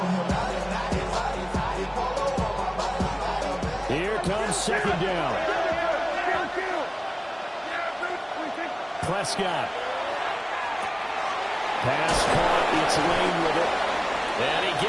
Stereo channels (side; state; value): both; identical; correlation 1.00